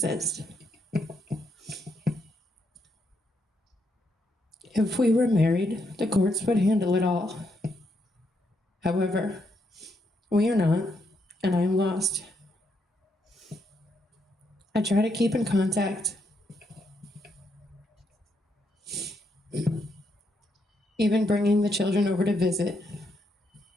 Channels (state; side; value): normal; both; correlation 0.78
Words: If we were married, the courts would handle it all. However, we are not, and I am lost. I try to keep in contact, even bringing the children over to visit.